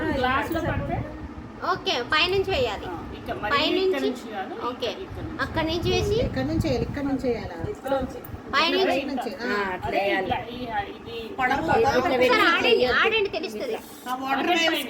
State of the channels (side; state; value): both; identical; correlation 1.00